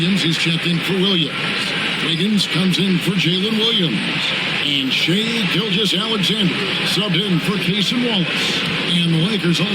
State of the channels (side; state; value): both; identical; correlation 1.00